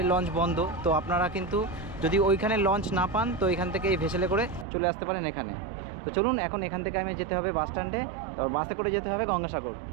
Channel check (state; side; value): drops out; left; at 4.7 s